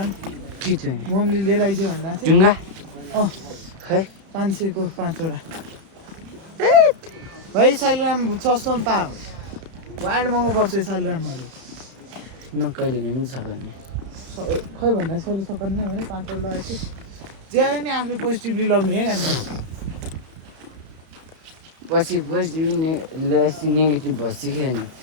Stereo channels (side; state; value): left; late; 31 ms